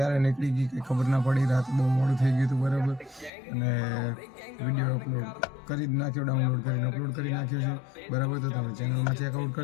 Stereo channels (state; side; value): drops out; right; at 3.3 s